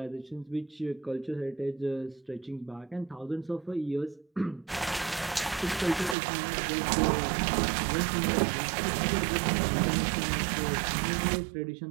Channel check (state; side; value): drops out; left; at 6.2 s